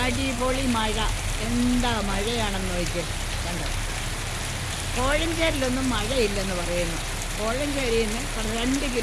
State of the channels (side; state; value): both; identical; correlation 1.00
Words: അടിപൊളി മഴ. എന്താ മഴയാണെന്ന് നോക്കി കണ്ടോ. കോഴഞ്ചേരിലൊന്നും മഴയില്ലെന്ന് പറയുന്നു. കോഴഞ്ചേരിയിൽ നിന്ന് 2